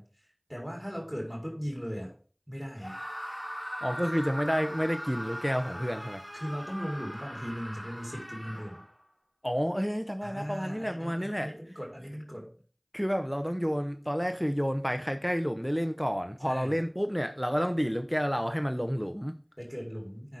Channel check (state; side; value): identical; both; correlation 1.00